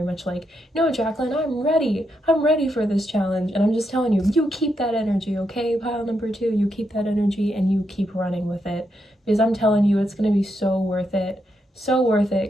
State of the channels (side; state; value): both; normal; correlation 0.81